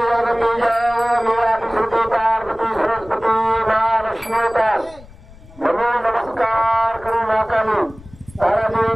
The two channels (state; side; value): noise; left; rumble, 21 dB below the sound